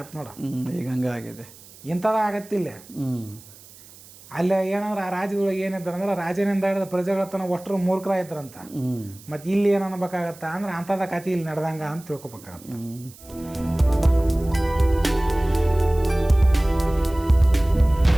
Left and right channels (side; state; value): right; noise; hiss, 22 dB below the sound